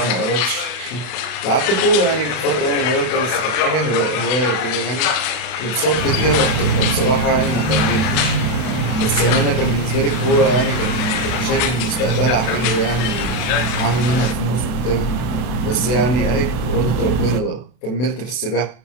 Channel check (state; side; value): late; right; 33 ms